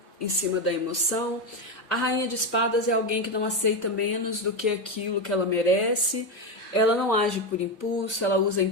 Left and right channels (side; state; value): both; normal; correlation 0.12